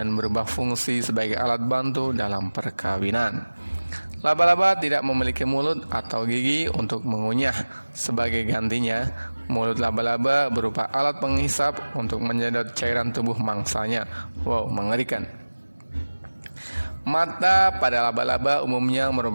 berubah fungsi sebagai alat bantu dalam perkawinan. Laba-laba tidak memiliki mulut atau gigi untuk mengunyah. Sebagai gantinya, mulut laba-laba berupa alat penghisap untuk menyedot cairan tubuh mangsanya. Wow, mengerikan. Mata pada laba-laba umumnya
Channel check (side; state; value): both; inverted; correlation -1.00